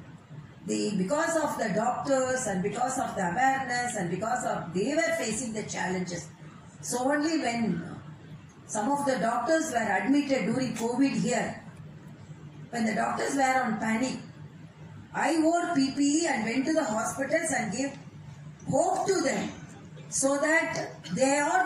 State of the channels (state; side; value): identical; both; correlation 1.00